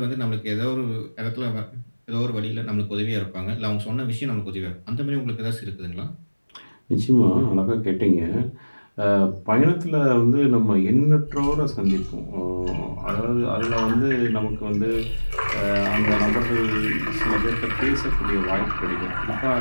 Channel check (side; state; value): both; inverted; correlation -1.00